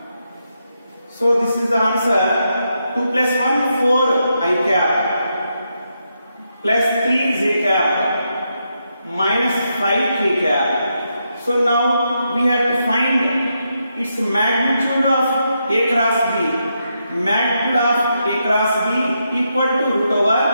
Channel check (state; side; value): inverted; both; correlation -0.82